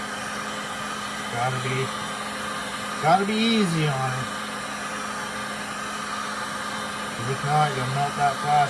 gotta be easy on it. Because if not, you'll melt that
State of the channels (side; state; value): both; identical; correlation 1.00